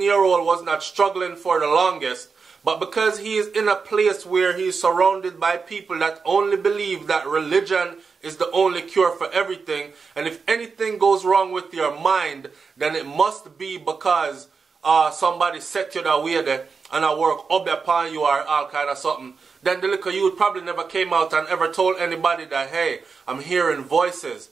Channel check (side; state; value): left; quieter; 5.1 dB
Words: was not struggling for the longest, but because he is in a place where he is surrounded by people that only believe that religion is the only cure for everything, and if anything goes wrong with your mind, then it must be because somebody set you that way there and I work up upon you or all kind of something. Then the little youth probably never came out and ever told anybody that, hey, I'm hearing voices,